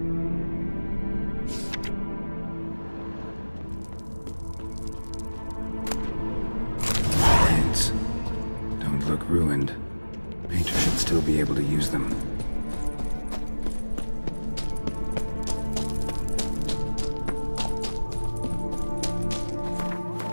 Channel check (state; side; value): inverted; both; correlation -1.00